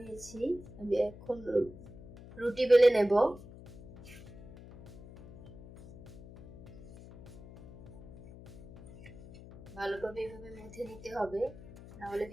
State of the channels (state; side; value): noise; left; hum, 17 dB below the sound